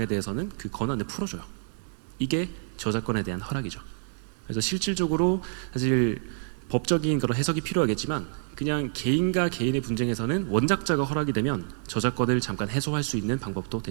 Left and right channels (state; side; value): silent; left; digital silence